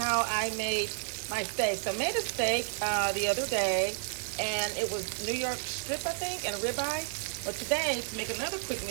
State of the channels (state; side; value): silent; left; 57 dB below the other